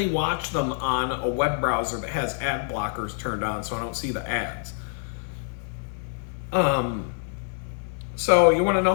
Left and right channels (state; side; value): silent; right; 61 dB below the other